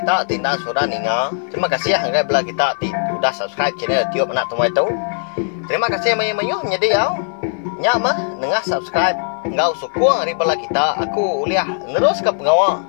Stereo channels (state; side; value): silent; right; 57 dB below the other